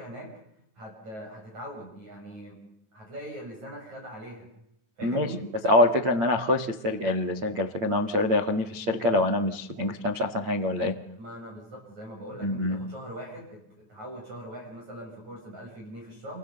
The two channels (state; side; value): late; left; 8.8 ms